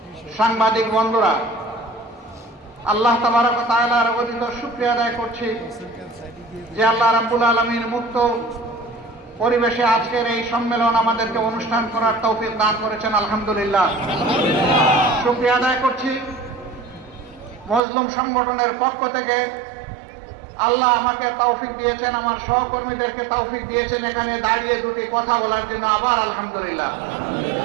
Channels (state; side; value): drops out; left; at 17.8 s